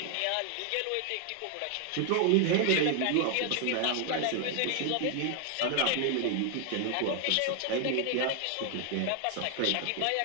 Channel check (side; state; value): both; different; correlation 0.00